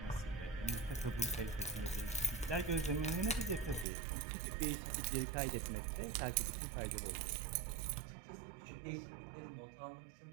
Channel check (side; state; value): left; drops out; at 3.9 s